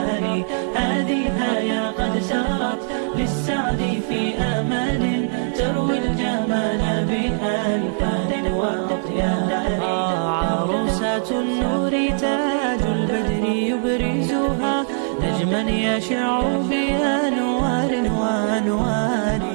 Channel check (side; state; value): left; silent; digital silence